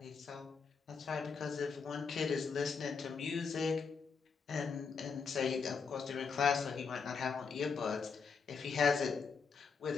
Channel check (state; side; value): quieter; right; 5.5 dB